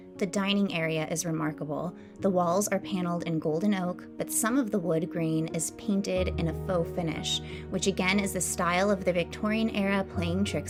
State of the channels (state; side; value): identical; both; correlation 1.00